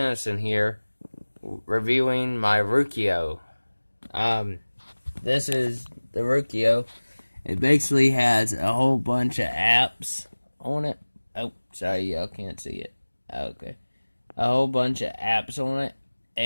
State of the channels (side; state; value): both; inverted; correlation -1.00